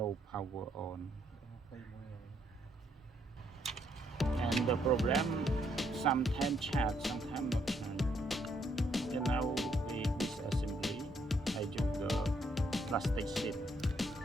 power on. And the problem, sometimes chat, sometimes not chat. And now with disassembly, I use the plastic sheet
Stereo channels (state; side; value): normal; both; correlation 0.72